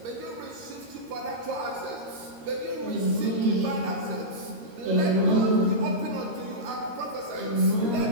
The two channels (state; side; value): late; left; 13 ms